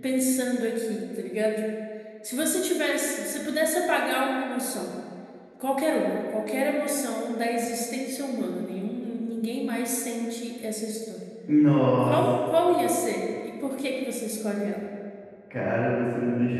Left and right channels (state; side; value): identical; both; correlation 1.00